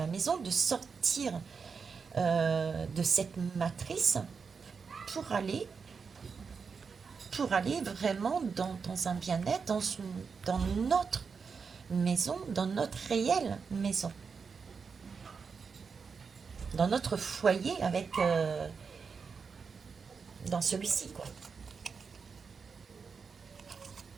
maison, de sortir de cette matrice pour aller vraiment dans un bien-être, dans notre maison, dans notre réelle maison, dans notre foyer avec dans celui-ci, quoi.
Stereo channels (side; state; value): left; quieter; 5.5 dB